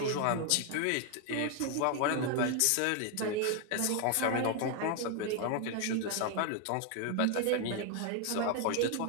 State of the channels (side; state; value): both; different; correlation 0.01